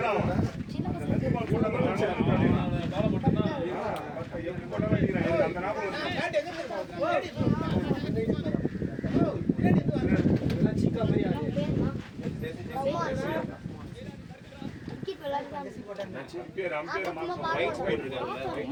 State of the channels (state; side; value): identical; both; correlation 1.00